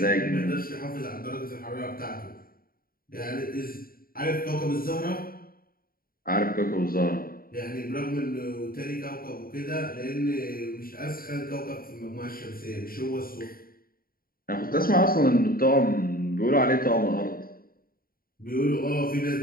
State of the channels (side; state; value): right; late; 0.42 ms